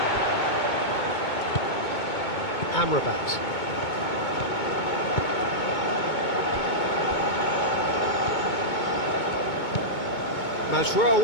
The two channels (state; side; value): late; right; 2.2 ms